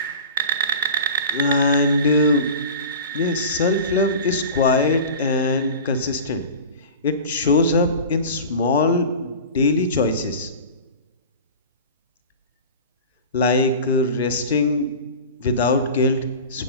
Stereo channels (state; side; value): inverted; both; correlation -0.35